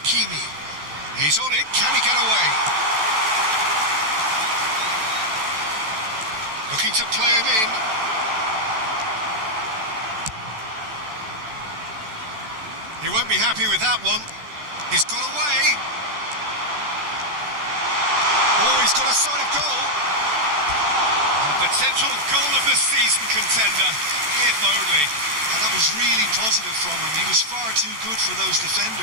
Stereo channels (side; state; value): left; late; 14 ms